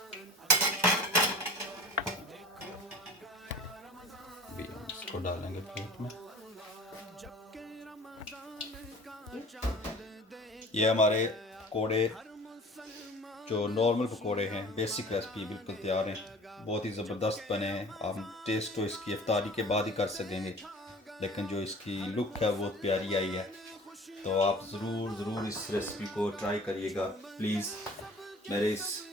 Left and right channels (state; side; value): normal; both; correlation 0.44